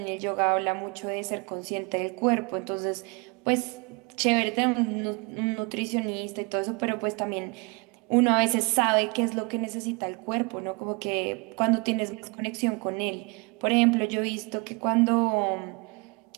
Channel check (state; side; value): quieter; left; 29.6 dB